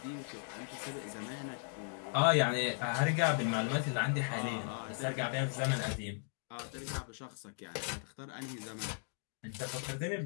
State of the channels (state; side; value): silent; right; 53 dB below the other